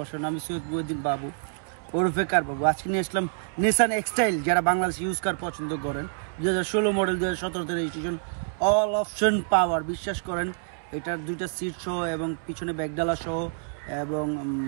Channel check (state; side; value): silent; left; 60 dB below the other